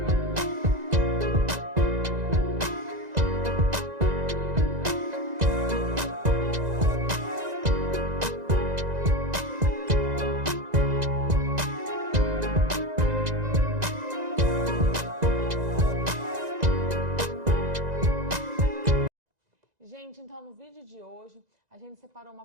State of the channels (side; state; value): left; late; 2.0 ms